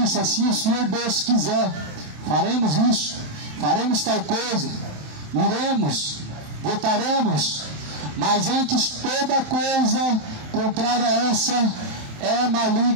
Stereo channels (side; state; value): left; late; 28 ms